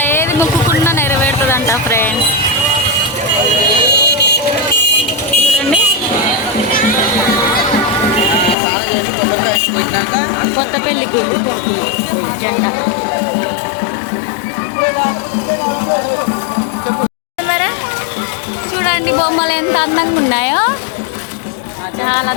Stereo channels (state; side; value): drops out; right; at 8.6 s